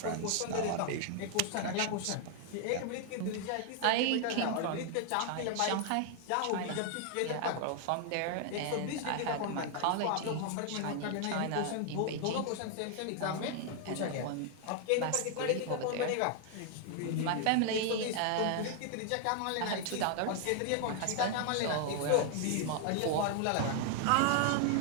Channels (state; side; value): different; both; correlation 0.00